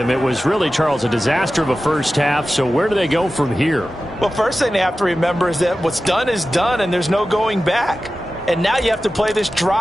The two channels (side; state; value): both; normal; correlation 0.94